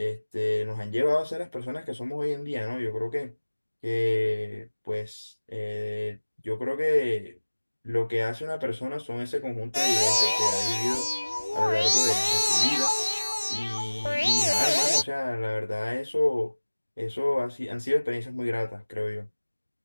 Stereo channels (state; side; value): inverted; both; correlation -1.00